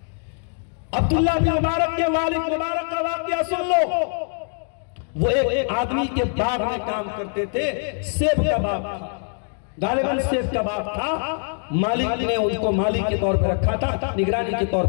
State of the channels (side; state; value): right; silent; 57 dB below the other